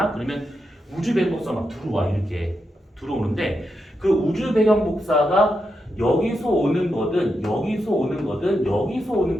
그러면 우주 배경 복사 막 들어와. 이렇게 들어오는데, 그 우주 배경 복사가 여기서 오는 거든 여기서 오는 거든 여기서 오는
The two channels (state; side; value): normal; both; correlation 0.85